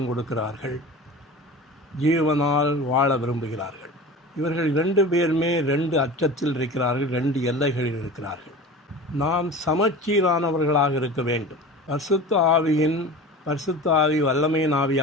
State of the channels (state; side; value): normal; both; correlation 0.35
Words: கொடுக்கிறார்கள். ஜீவனால் வாழ விரும்புகிறார்கள். இவர்கள் 2 பேருமே 2 அச்சத்தில் இருக்கிறார்கள், 2 எல்லைகளில் இருக்கிறார்கள். நாம் சமச்சீரானவர்களாக இருக்க வேண்டும். பரிசுத்த ஆவி வல்லமையின்